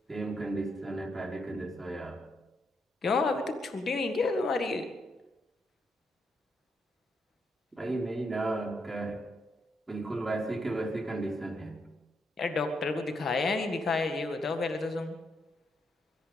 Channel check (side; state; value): both; normal; correlation 0.79